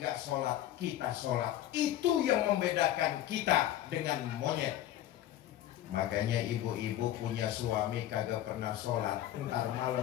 sholat, kita sholat. Itu yang membedakan kita dengan monyet. Makanya ibu-ibu punya suami kagak pernah sholat, ntar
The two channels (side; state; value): right; quieter; 12.8 dB